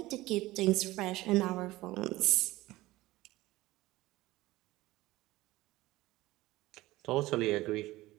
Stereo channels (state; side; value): quieter; left; 18.3 dB